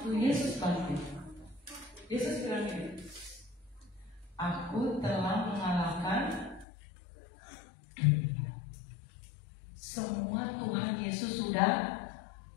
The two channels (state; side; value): drops out; right; at 6.7 s